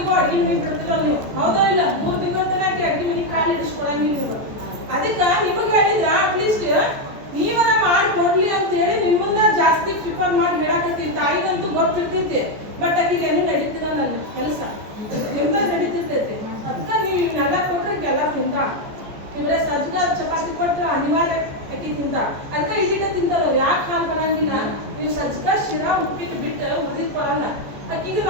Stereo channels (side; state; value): left; late; 14 ms